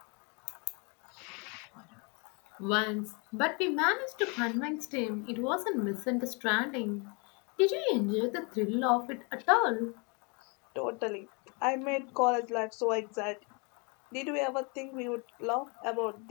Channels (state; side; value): quieter; right; 32.7 dB